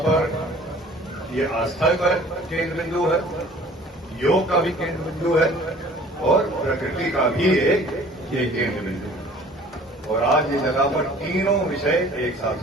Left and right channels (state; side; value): normal; both; correlation 0.50